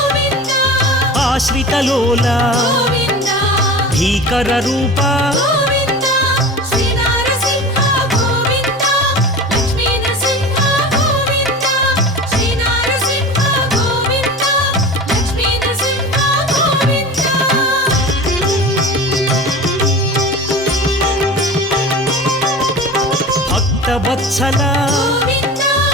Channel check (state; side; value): normal; both; correlation 0.33